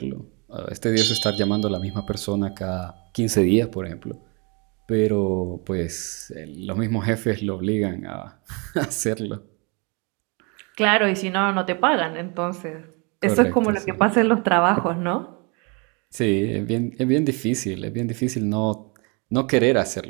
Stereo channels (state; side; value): quieter; left; 31.7 dB